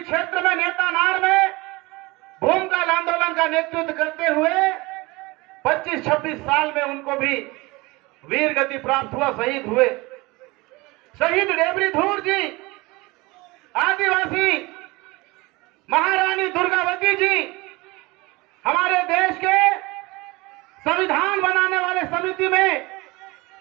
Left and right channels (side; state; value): left; quieter; 23.2 dB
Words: क्षेत्र में नेतानार में भूमिकाल आंदोलन का नेतृत्व करते हुए 25-26 साल में उनको भी वीर गति प्राप्त हुआ, शहीद हुए। शहीद डेबरी धूर जी आदिवासी महारानी दुर्गावती जी हमारे देश के संविधान बनाने वाले समिति में